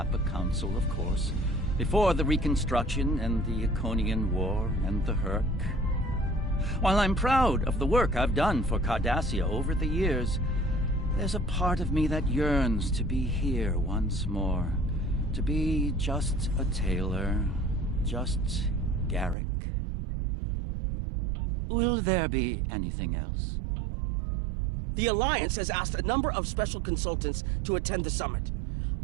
Council, of course. Before the Reconstruction and the Iconian War and the Herc. While I'm proud of the work I've done for Cardassia over the years, there's a part of me that yearns to be here once more. To be just a tailor, just Garrick. Will there be anything else? The Alliance has asked a number of special consultants to attend the summit.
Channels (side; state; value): left; drops out; at 19.4 s